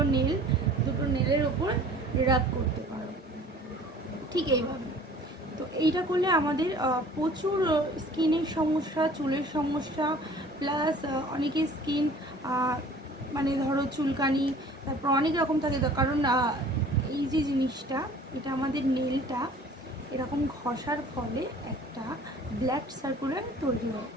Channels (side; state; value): both; normal; correlation 0.49